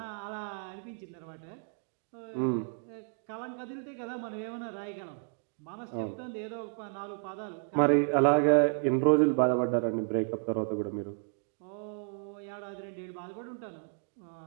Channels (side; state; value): left; silent; 56 dB below the other